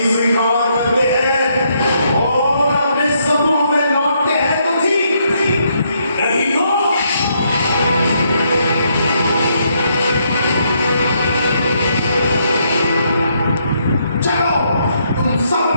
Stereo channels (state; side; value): inverted; both; correlation -0.74